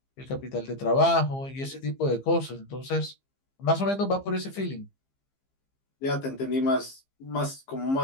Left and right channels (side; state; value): right; late; 15 ms